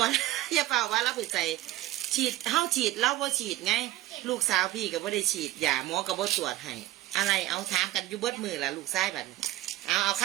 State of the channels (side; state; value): left; quieter; 16.7 dB